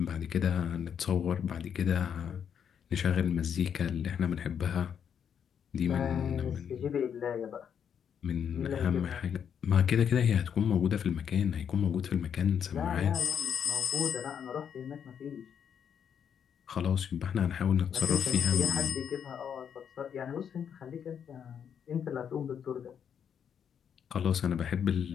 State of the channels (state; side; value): quieter; right; 8.0 dB